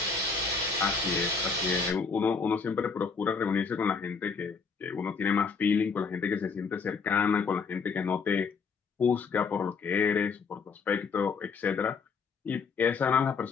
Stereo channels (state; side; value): quieter; right; 5.2 dB